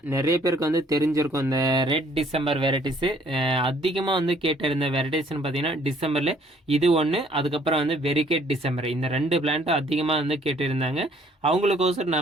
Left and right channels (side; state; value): both; normal; correlation 0.61